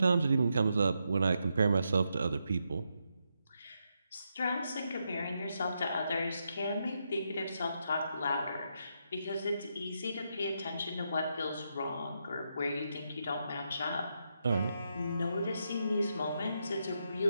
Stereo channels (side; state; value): both; inverted; correlation -0.82